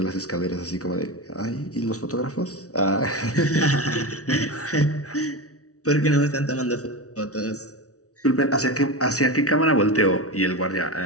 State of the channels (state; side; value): late; right; 0.66 ms